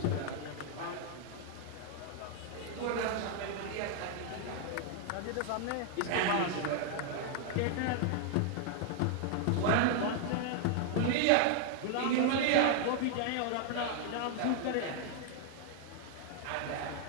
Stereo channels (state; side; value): different; both; correlation 0.00